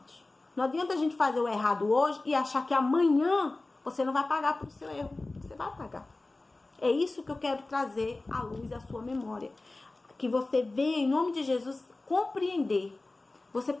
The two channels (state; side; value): quieter; right; 3.1 dB